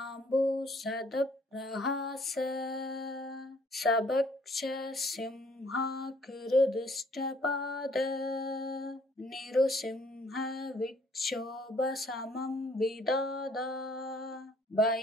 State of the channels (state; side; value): normal; both; correlation 0.60